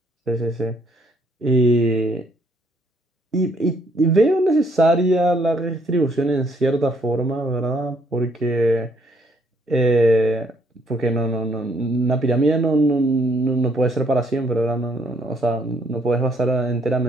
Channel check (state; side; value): normal; both; correlation 0.68